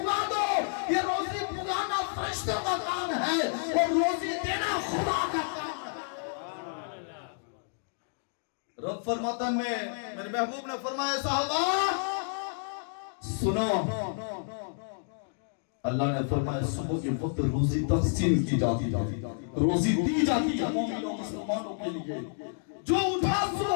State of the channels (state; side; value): silent; right; digital silence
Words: دو. یہ روزی پگانا فرشتوں کا کام ہے اور روزی دینا خدا کا کام ہے. رب فرماتا ہے, میرے محبوب نے فرمایا صحابہ سنو, اللہ نے فرمایا صبح کے وقت روزی تقسیم کی جاتی ہے, روزی دی جاتی ہے مومنوں مسلمانوں کے لیے. جو اٹھا